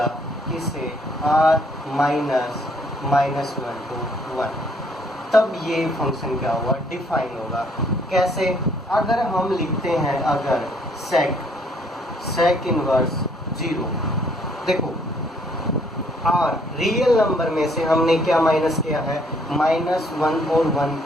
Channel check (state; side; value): normal; both; correlation 0.65